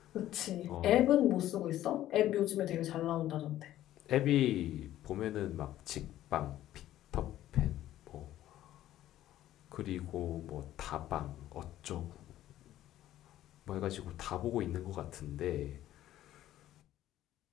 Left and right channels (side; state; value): right; quieter; 13.4 dB